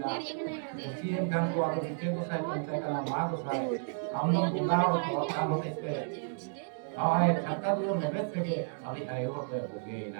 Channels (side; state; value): left; silent; digital silence